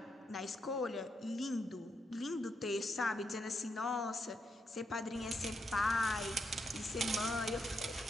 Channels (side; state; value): both; normal; correlation 0.81